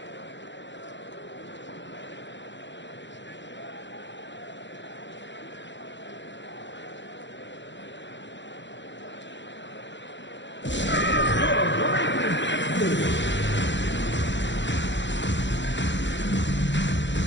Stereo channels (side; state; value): right; late; 0.53 ms